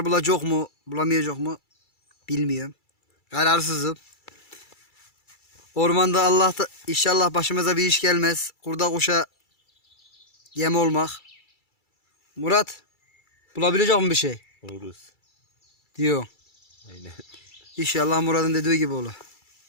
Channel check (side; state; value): right; late; 2.3 ms